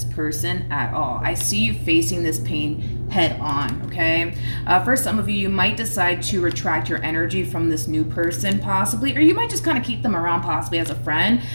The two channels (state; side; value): inverted; both; correlation -1.00